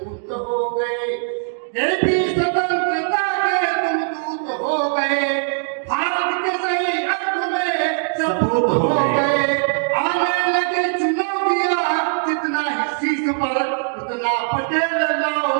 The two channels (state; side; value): silent; left; digital silence